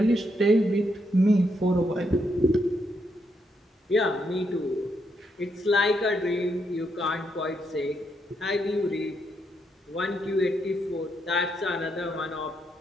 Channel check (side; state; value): both; normal; correlation 0.78